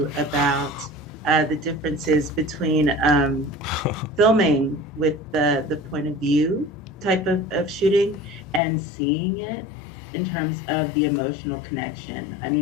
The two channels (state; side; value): drops out; right; at 8.6 s